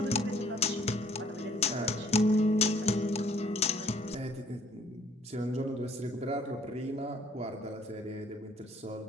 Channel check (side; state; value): both; normal; correlation 0.61